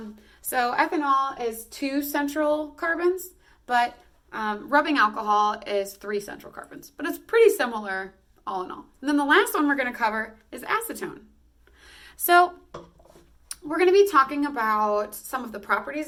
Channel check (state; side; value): identical; both; correlation 1.00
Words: So ethanol is 2 central carbons, but rubbing alcohol is 3 central carbons. But it's pretty similar all in all. And then the last one we're going to cover is acetone. So we're going to be talking about some of the properties